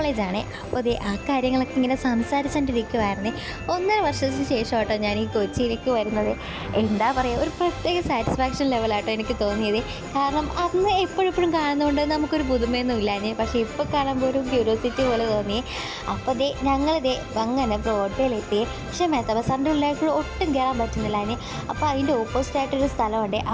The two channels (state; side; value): identical; both; correlation 1.00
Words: അപ്പോൾ ഇതേ ആ കാര്യങ്ങളൊക്കെ ഇങ്ങനെ സംസാരിച്ചുകൊണ്ടിരിക്കുമായിരുന്നു. 1.5 വർഷത്തിന് ശേഷം കേട്ടോ ഞാൻ ഈ കൊച്ചിയിലേക്ക് വരുന്നത്. എന്താ പറയുക, ഒരു പ്രത്യേക സാറ്റിസ്ഫാക്ഷൻ ലെവലാട്ടോ എനിക്ക് തോന്നിയത്. കാരണം അന്ന് എപ്പോഴെപ്പോഴും കാണുന്നതുകൊണ്ട് നമുക്കൊരു പുതുമയൊന്നും ഇല്ലാഞ്ഞ്, പക്ഷേ ഇപ്പോൾ കാണുമ്പോൾ ഒരു ക്യൂരിയോസിറ്റി പോലെ തോന്നി. അപ്പോൾ ഞങ്ങളിതേ അങ്ങനെ ബ്രോഡ്വേയിലെത്തി. പക്ഷേ മെത്ത ബസാറിൻ്റെ ഉള്ളിലേക്ക് ഒട്ടും കയറാൻ പറ്റുന്നില്ലാഞ്ഞ്. അപ്പോൾ അതിൻ്റെ ഓപ്പോസിറ്റായിട്ടൊരു സ്ഥലമുണ്ട്,